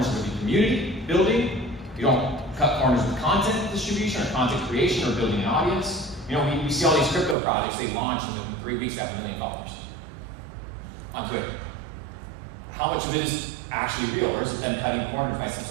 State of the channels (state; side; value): drops out; left; at 7.4 s